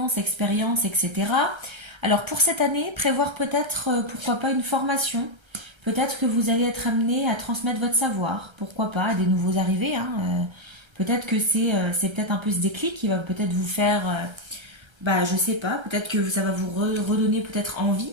expérience, etc. Alors pour cette année, prévoir peut-être, pourquoi pas, une formation. Peut-être que vous allez être amené à transmettre votre savoir. Pourquoi pas, à des nouveaux arrivés, hein. Peut-être que c'est peut-être un peu ce déclic qui va peut-être vous faire, je sais pas, peut-être que ça va vous redonner peut-être envie,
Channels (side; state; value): left; late; 1.3 ms